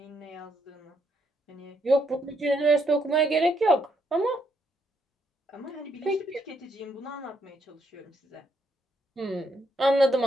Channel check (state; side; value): normal; both; correlation 0.75